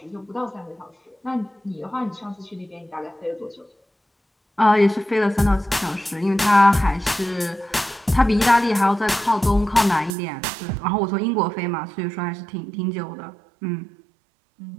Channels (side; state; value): left; drops out; at 10.1 s